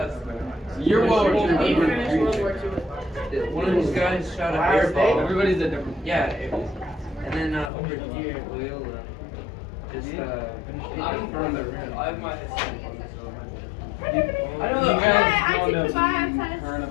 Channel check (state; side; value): drops out; right; at 7.7 s